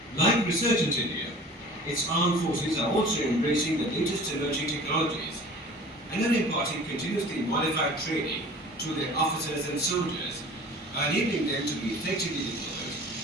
Like Resurgent India, its armed forces are also embracing the latest emerging technologies and are imparting continuously modified training to their officers and soldiers, enabling them to be effectively deployed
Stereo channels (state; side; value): normal; both; correlation 0.44